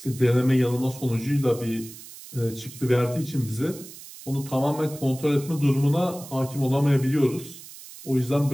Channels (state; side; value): noise; right; hiss, 16 dB below the sound